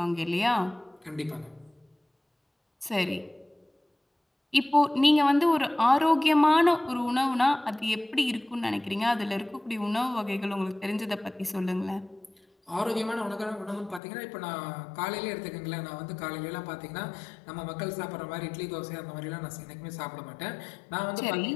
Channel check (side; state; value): right; drops out; at 14.0 s